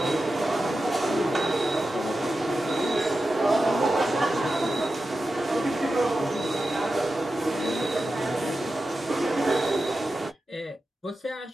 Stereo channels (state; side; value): normal; both; correlation 0.92